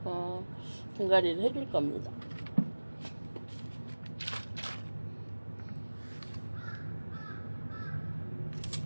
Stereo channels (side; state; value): both; inverted; correlation -1.00